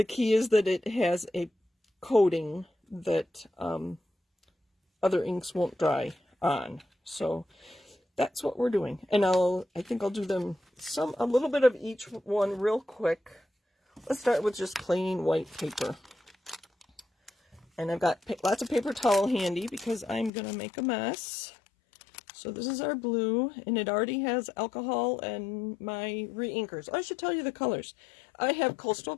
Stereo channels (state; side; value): drops out; right; at 20.3 s